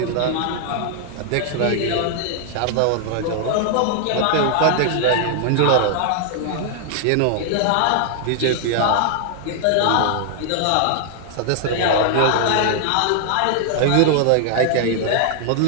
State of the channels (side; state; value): both; different; correlation 0.00